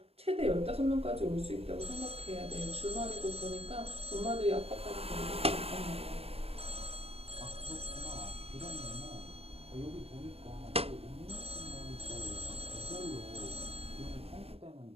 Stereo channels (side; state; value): left; late; 0.28 ms